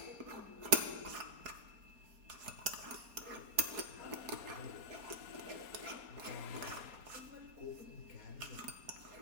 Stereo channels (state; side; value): late; left; 4.3 ms